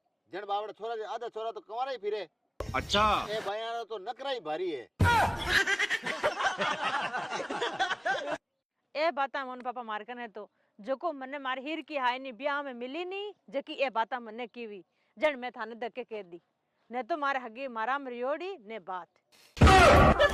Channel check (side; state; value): both; identical; correlation 1.00